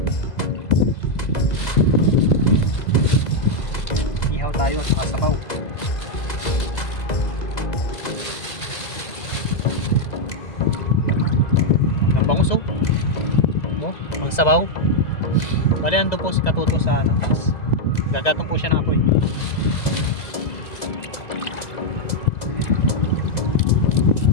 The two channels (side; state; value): right; late; 2.0 ms